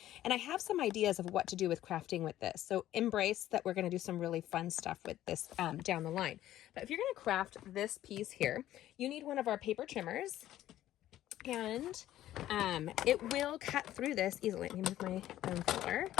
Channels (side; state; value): right; quieter; 13.3 dB